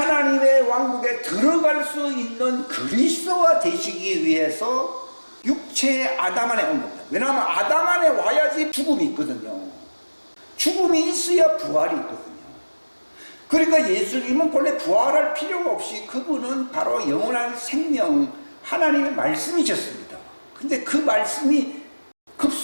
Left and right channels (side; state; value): both; inverted; correlation -1.00